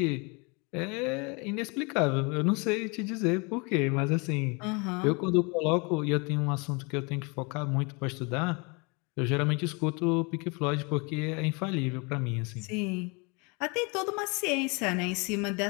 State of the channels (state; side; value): quieter; right; 30.4 dB